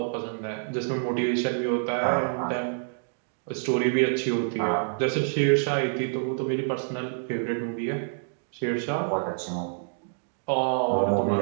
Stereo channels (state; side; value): silent; left; digital silence